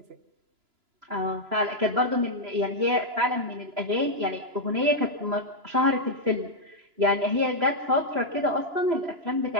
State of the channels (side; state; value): left; late; 3.0 ms